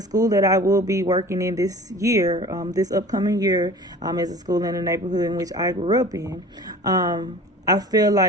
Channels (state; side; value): normal; both; correlation 0.41